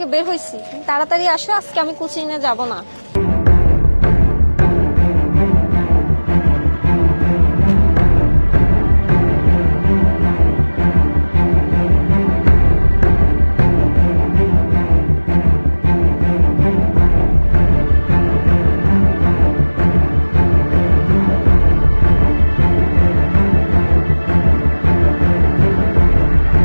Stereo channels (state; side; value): inverted; both; correlation -1.00